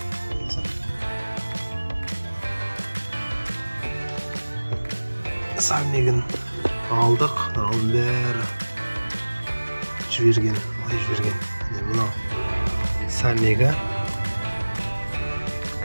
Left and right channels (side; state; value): both; inverted; correlation -1.00